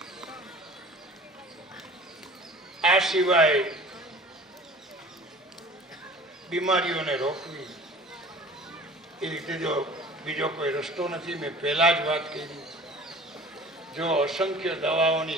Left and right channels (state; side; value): normal; both; correlation 0.44